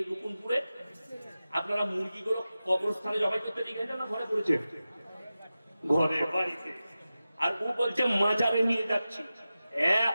রুকুনপুরে আপনারা মুরগিগুলো কবরস্থানে জবাই করতে নিয়ে গেছেন না ঘরে করেছে? ঘরে, বাড়িতে। আর ও বলছে মাজারে নিয়ে যাচ্ছি।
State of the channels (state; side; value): inverted; both; correlation -0.94